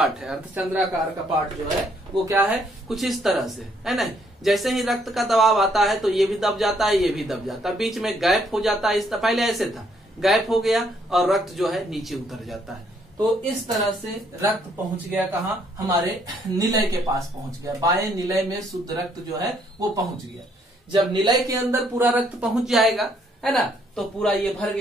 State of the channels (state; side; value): normal; both; correlation 0.69